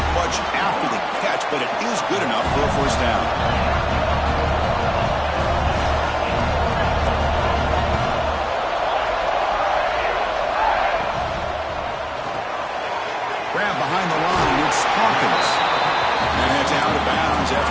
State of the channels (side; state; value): both; identical; correlation 1.00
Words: much after the catch, but it is good enough for a first down. Grab behind the line, it's Hawkins. And heads out of bounds